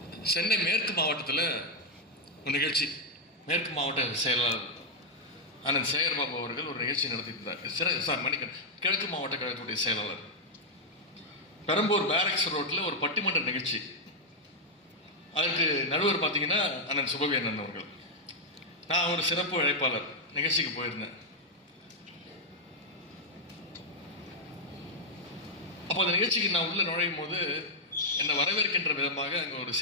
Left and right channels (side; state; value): both; normal; correlation -0.01